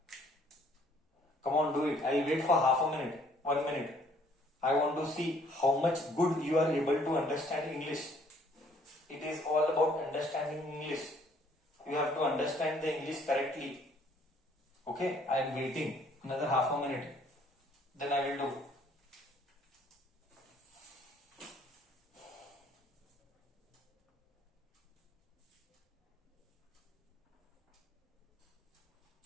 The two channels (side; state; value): both; normal; correlation 0.61